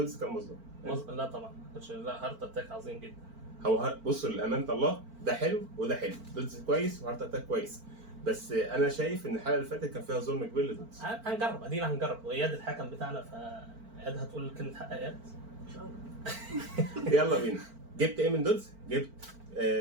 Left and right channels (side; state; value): left; late; 4.4 ms